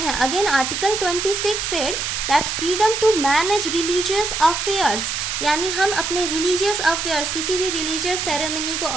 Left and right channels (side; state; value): right; noise; hiss, 2 dB below the sound